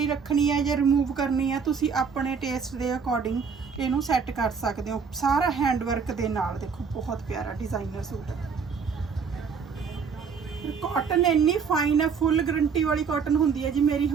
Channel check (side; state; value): left; quieter; 5.9 dB